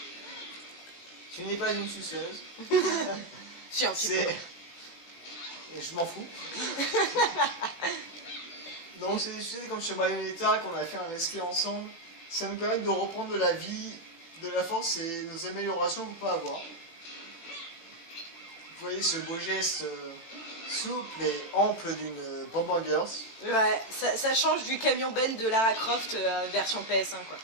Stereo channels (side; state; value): right; late; 18 ms